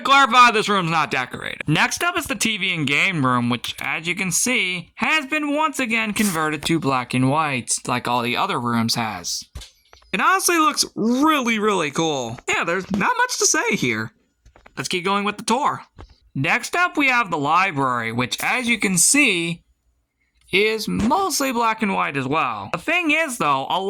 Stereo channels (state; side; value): identical; both; correlation 1.00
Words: clarify, this room's not decorated. Next up is the TV and game room, which, as you can see, has been once again converted to black and white, like all the other rooms has. It honestly looks really, really cool. Yeah, there's not much to say here. Let's keep going with the tour. Next up, we have the library, which, as you can see, is mostly black and white as well. The thing is, though, a